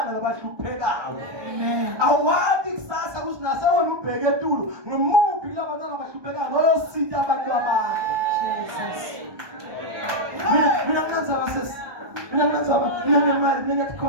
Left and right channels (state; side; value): late; left; 1.2 ms